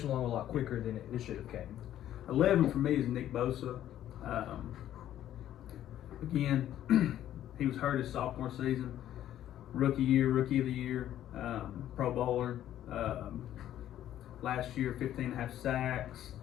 along a lot quicker than it should have came. 11 for me is Nick Bosa. Again, he was hurt his sophomore season. Rookie of the year, Pro Bowler. Last year, 15.5 sacks,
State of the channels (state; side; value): quieter; right; 11.9 dB